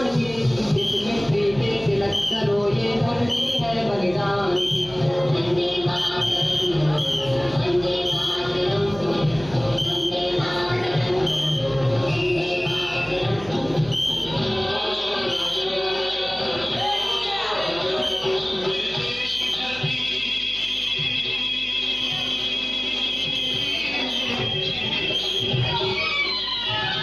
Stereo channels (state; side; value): noise; right; hum, 18 dB below the sound